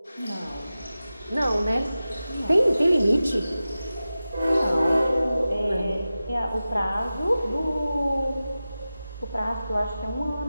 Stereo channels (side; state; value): both; inverted; correlation -0.95